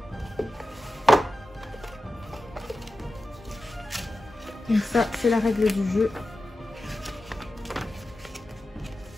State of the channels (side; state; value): both; normal; correlation 0.93